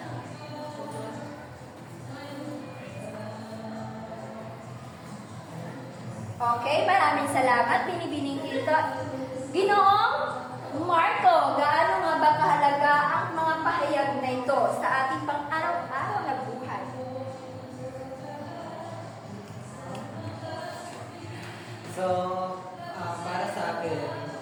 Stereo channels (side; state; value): both; identical; correlation 1.00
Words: Okay, maraming salamat, Binibining Quinto. Ginoong Marco, gaano nga ba kahalaga ang mga pahayag na ito sa ating pang-araw-araw na buhay? So, para sa akin,